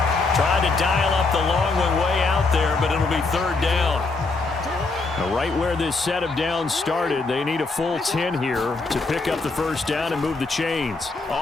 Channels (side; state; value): right; quieter; 3.8 dB